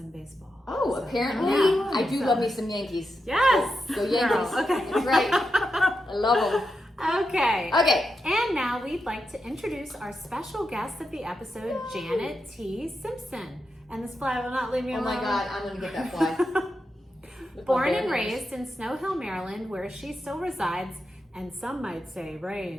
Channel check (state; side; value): normal; both; correlation 0.87